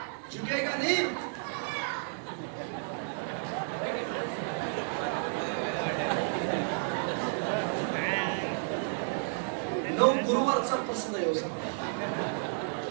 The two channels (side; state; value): left; silent; digital silence